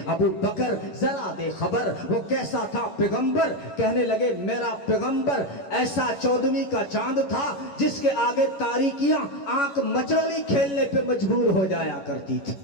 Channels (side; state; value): right; late; 11 ms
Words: ابو بکر ذرا دے خبر وہ کیسا تھا پیغمبر. کہنے لگے میرا پیغمبر ایسا 14ویں کا چاند تھا جس کے آگے تاریکیاں آنکھ مچولی کھیلنے پہ مجبور ہو جایا کرتی تھی.